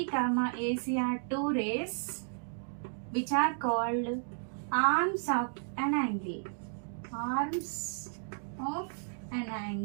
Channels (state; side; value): silent; left; digital silence